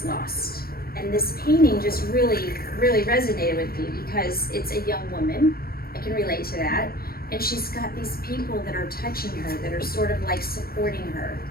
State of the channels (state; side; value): late; right; 0.44 ms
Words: Lost." And this painting just really resonated with me because it's a young woman. I can relate to that. And she's got these people that are touching her, that are sort of like supporting her.